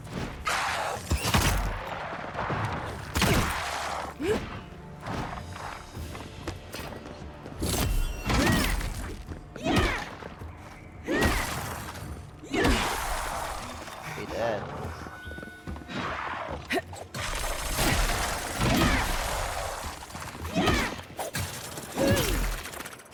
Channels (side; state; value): both; identical; correlation 1.00